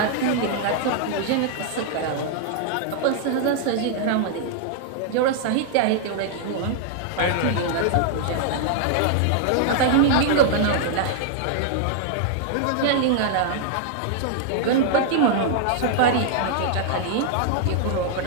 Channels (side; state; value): both; different; correlation -0.01